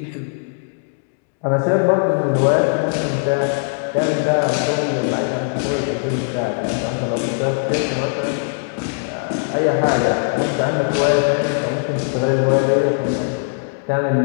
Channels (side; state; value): right; silent; digital silence